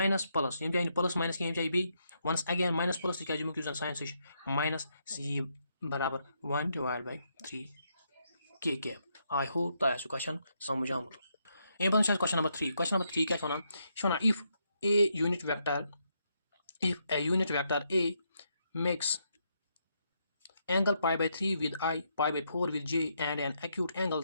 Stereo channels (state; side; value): inverted; both; correlation -0.78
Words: plus यम जान प्लस माइनस क्या जाए B once again minus plus तक जन साइन सह माइनस यह बराबर 1 डिवाइड बाय 3 के कैप आई होप तह क्वेश्चन समझ आमुत अम पे क्वेश्चन नंबर 3 क्या one if a unit vector a makes angle pi by 3 with I, pi by 4 with j, and an acute angle